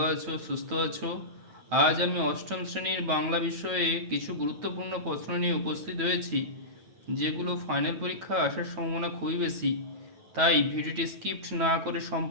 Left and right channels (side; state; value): left; late; 9.1 ms